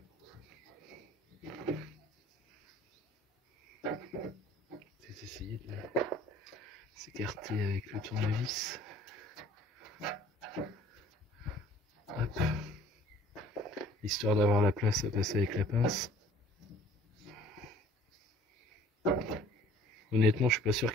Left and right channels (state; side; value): normal; both; correlation 0.52